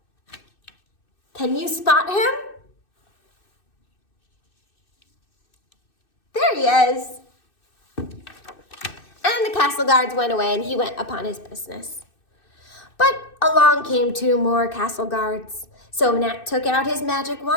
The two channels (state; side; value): late; right; 2.6 ms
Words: Can you spot him? There he is. And the castle guards went away and he went upon his business. But along came 2 more castle guards. So Nat took out his magic